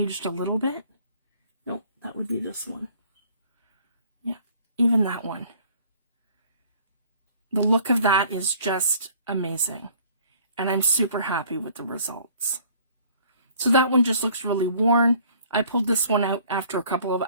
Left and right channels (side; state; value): both; inverted; correlation -0.55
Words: a little bit. Nope, that would be this one. Yeah, even that one. The look of that is just amazing. And I'm super happy with the results. So that one just looks really worn. I pulled this one out after a couple of